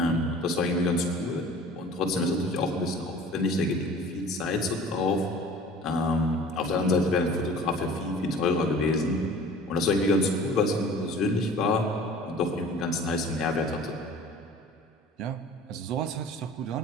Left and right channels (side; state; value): both; normal; correlation 0.45